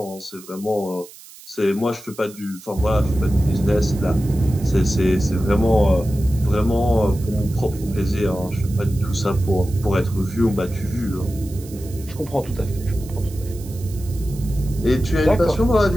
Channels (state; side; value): noise; right; hiss, 19 dB below the sound